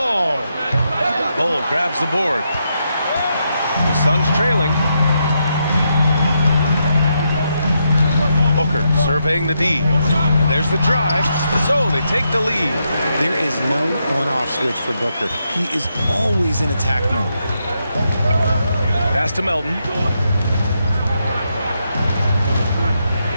Bull grabs the board. The Suns trailing. Booker surveying the D. And there's the drive. So they take the lead. There is no on-off switch for Booker. He is always in attack mode. Pass to Melton.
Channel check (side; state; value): both; inverted; correlation -0.81